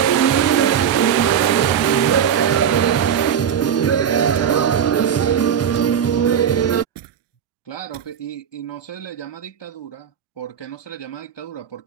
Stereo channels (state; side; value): quieter; left; 8.4 dB